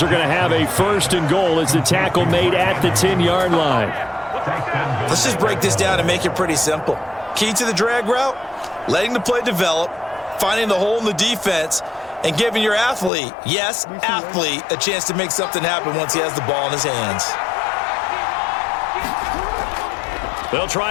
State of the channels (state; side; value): drops out; right; at 13.1 s